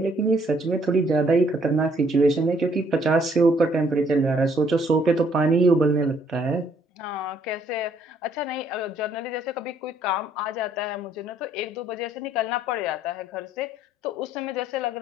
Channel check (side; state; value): both; normal; correlation 0.65